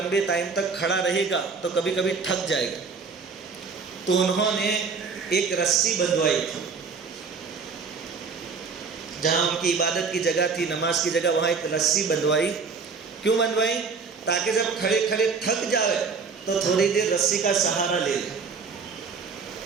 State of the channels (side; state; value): left; quieter; 5.1 dB